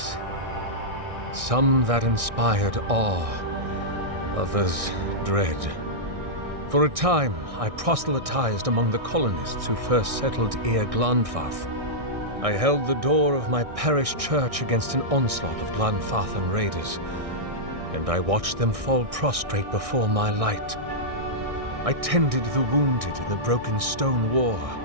Some that inspired awe, others dread. For a time, I proselytized among the colonists who first settled Glanfath. I held the door of my parish church against an onslaught of Glanfathan raiders, and I watched them fall prostrate before my light. I tended the wounded in the Broken Stone War,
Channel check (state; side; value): late; left; 1.6 ms